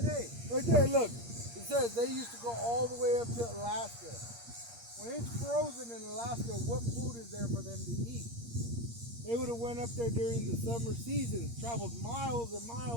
Right there, look. It says they used to go all the way up to Alaska. When it's frozen in Alaska, what food is there for them to eat? They would have went up there during the summer season, traveled miles and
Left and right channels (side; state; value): left; late; 8.6 ms